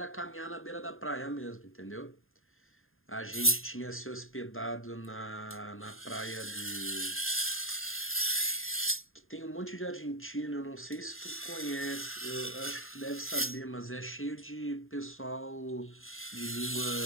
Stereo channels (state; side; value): late; right; 0.60 ms